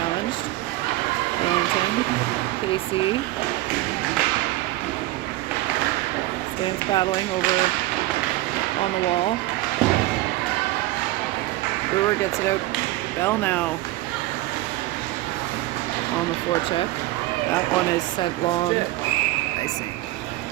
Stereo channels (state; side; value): quieter; left; 17.8 dB